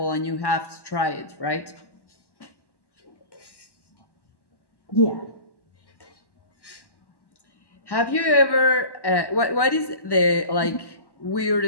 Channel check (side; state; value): right; late; 1.1 ms